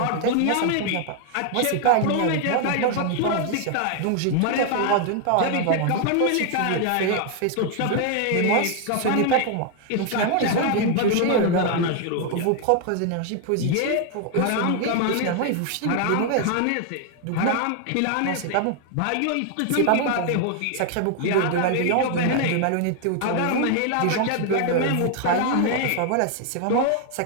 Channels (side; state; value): both; different; correlation 0.00